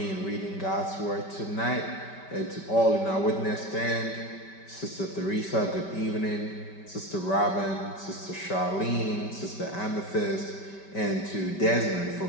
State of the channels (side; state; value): right; late; 5.2 ms